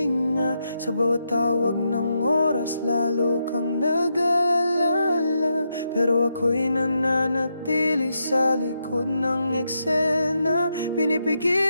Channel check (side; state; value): both; inverted; correlation -0.82